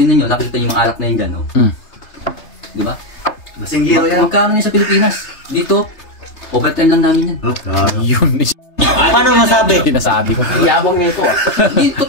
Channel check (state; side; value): late; right; 3.3 ms